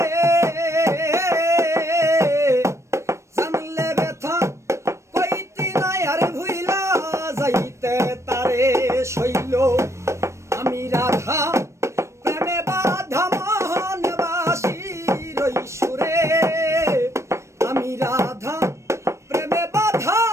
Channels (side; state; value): left; late; 0.14 ms